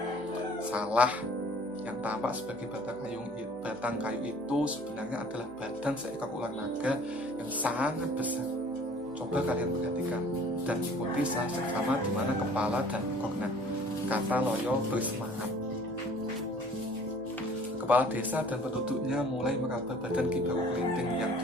Salah, yang tampak sebagai batang kayu itu sebenarnya adalah badan seekor ular naga yang sangat besar. Coba kalian perhatikan dan ikuti saya seksama di mana kepala dan ekornya, kata Loyo bersemangat. Kepala desa dan penduduknya mulai meraba badan Ki Baru Kelinting yang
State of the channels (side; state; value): right; noise; hum, 24 dB below the sound